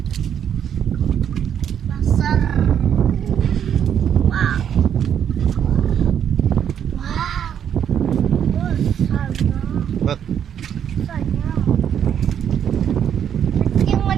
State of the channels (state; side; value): quieter; left; 8.9 dB